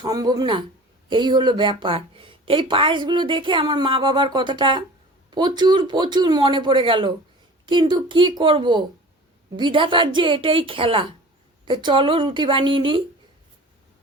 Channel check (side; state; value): both; normal; correlation 0.41